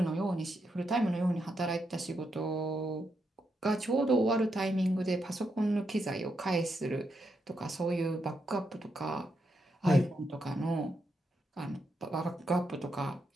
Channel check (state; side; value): normal; both; correlation 0.82